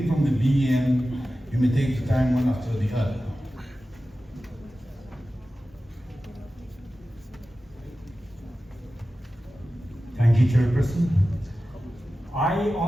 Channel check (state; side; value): normal; both; correlation 0.94